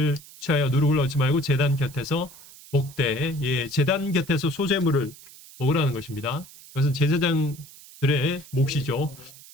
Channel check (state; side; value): noise; right; hiss, 20 dB below the sound